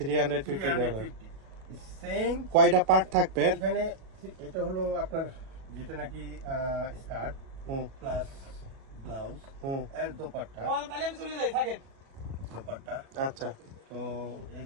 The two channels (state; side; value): late; left; 36 ms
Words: সেম কয়টা পার্ট থাকবে? এখানে এটা হলো আপনার যেটা নাকি স্কার্ট হুম প্লাস ব্লাউজ হুম এর দোপাট্টা। আচ্ছা। তো